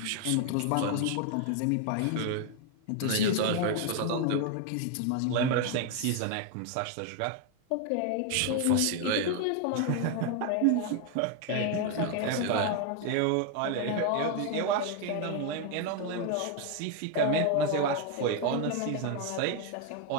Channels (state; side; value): different; both; correlation 0.01